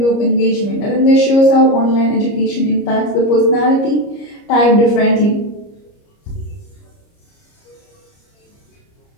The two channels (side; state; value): right; late; 30 ms